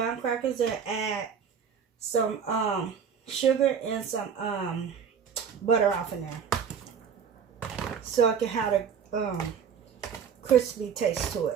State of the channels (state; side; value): quieter; left; 7.1 dB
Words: crackers and add some sugar and some butter off in there, so I can have a crispy taste to